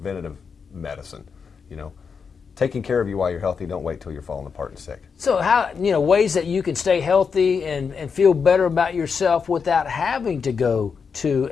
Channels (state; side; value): quieter; right; 5.9 dB